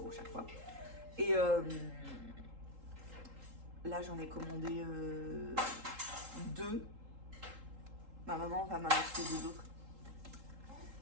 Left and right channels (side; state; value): left; late; 3.8 ms